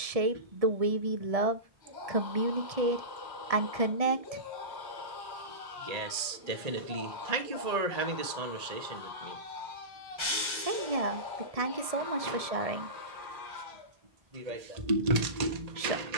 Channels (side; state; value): left; late; 1.8 ms